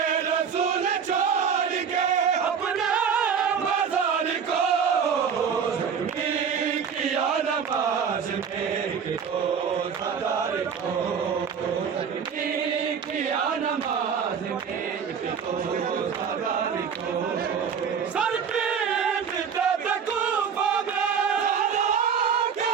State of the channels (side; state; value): left; quieter; 6.9 dB